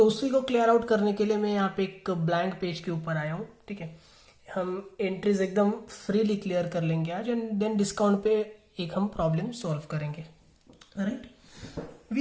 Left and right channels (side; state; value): both; identical; correlation 1.00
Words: उसी को क्लियर आउट करने के लिए मैं यहाँ पे एक ब्लैंक पेज के ऊपर आया हूँ। ठीक है, हम एंट्रीज एकदम फ्रीली क्लियर कर लेंगे आज, एंड देन डिस्काउंट पे एक हम प्रॉब्लम सॉल्व करेंगे, राइट।